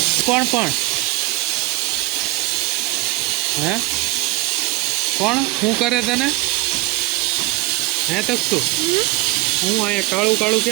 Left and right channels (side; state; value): left; quieter; 20.6 dB